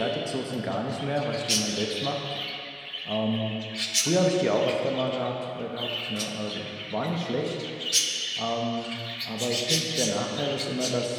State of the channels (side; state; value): both; identical; correlation 1.00